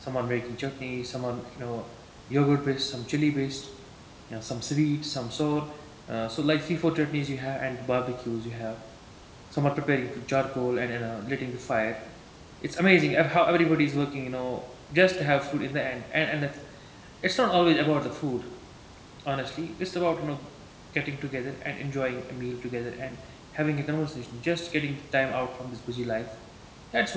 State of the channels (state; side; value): identical; both; correlation 1.00